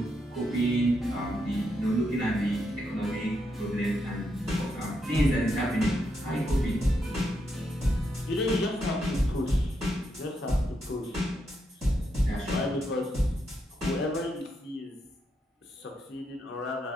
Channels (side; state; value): both; normal; correlation 0.81